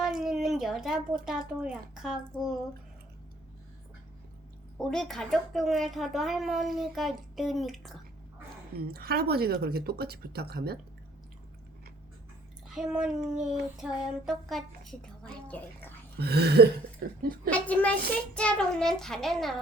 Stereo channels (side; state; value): both; normal; correlation 0.59